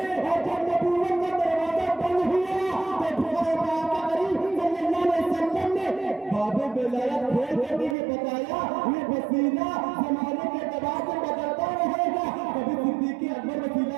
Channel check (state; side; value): drops out; left; at 8.0 s